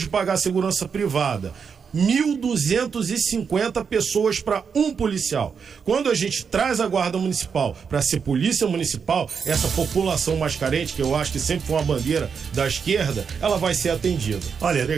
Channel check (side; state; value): left; quieter; 6.3 dB